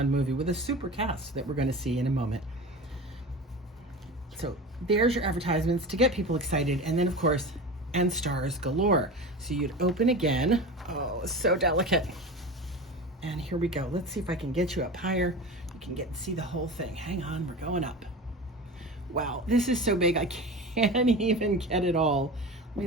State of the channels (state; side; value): normal; both; correlation 0.30